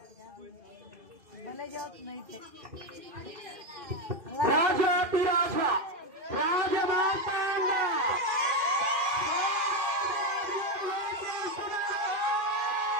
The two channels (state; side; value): late; left; 2.4 ms